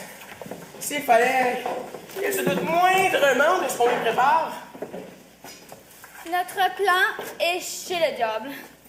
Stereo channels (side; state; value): both; identical; correlation 1.00